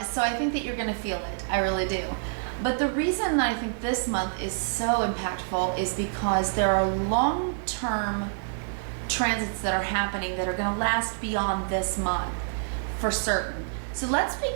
So I think that you're going to feel it. I really do. But the reason that I think this month is so impactful is because there are long-term transits that are happening that are going to last beyond this month for certain. So let's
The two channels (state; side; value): silent; left; digital silence